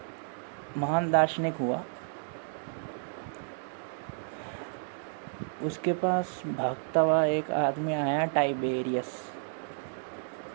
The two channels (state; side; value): silent; left; digital silence